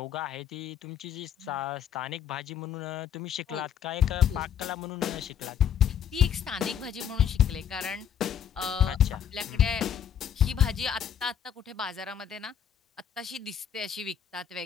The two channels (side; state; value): right; quieter; 8.9 dB